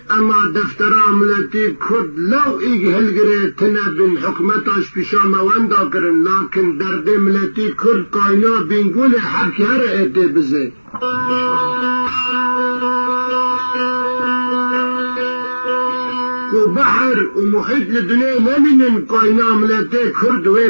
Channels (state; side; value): inverted; both; correlation -1.00